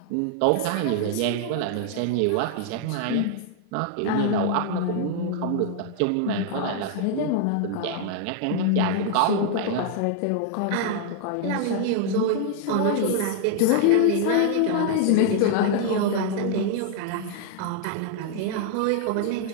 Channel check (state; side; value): different; both; correlation 0.00